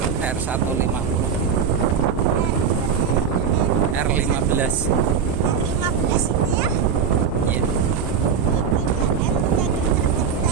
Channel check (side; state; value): left; quieter; 6.9 dB